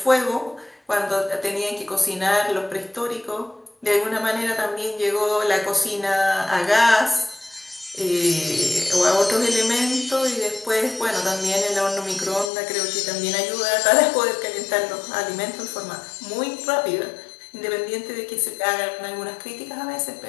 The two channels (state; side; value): drops out; right; at 12.5 s